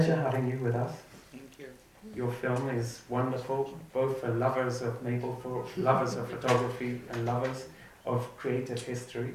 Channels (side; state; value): both; identical; correlation 1.00